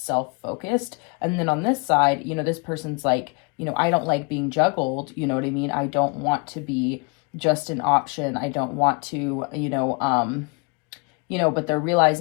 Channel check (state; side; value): quieter; right; 32.5 dB